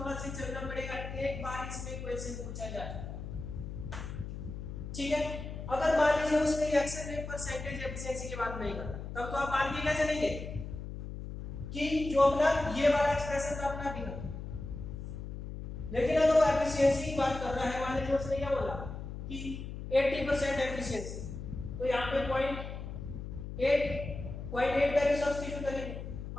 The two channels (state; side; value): noise; left; hum, 8 dB below the sound